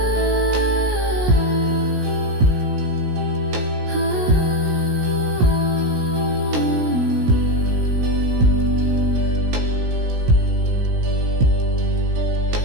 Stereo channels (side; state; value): left; late; 17 ms